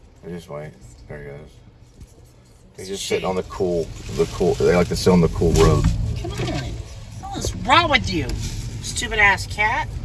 Just wait. There he goes. He's just sitting on the cool. They like to sit on the cool road. Come on. What's wrong with you? Stupid ass cat.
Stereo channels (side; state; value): both; identical; correlation 1.00